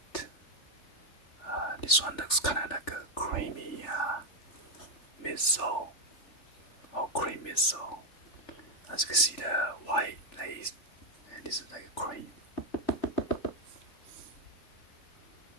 This one looks kind of like a creamy midsole, or cream midsole. As you can see, the white lace, and this is like a cream.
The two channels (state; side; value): late; right; 3.4 ms